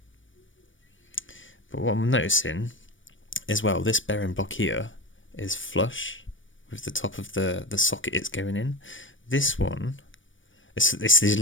But what I'm noticing as well, this bearing block here is flush with the top of the socket it's going in. This one, it's these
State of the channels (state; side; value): late; right; 0.56 ms